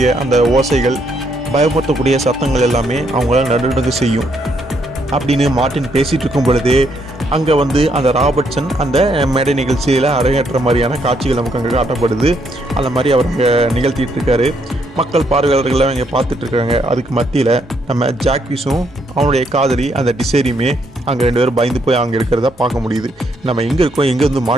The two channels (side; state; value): both; normal; correlation 0.73